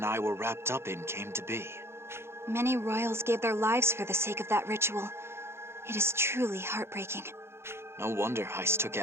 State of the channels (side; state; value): left; late; 0.12 ms